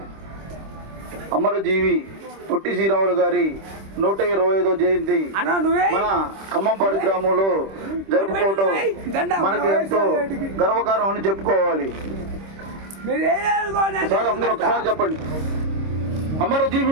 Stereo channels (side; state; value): left; late; 26 ms